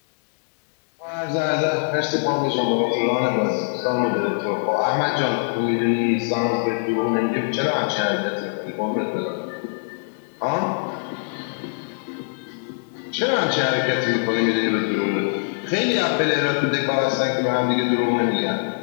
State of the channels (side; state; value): right; silent; digital silence